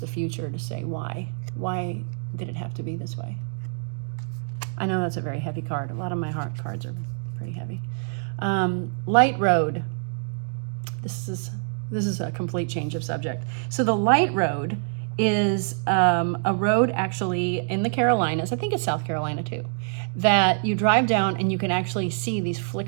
future to say, why? Why did it have to be this way? I know that's a very heavy card. A lot of my heart cards are pretty heavy. Light Road. This is a complete change of subject. So the Light Road is a road actually in the Carolinas, I think it's South Carolina too, that you drive down and you can actually see these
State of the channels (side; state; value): left; silent; 61 dB below the other